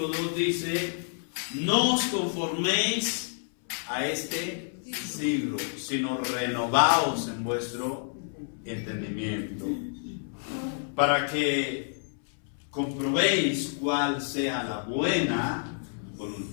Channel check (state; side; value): silent; right; 59 dB below the other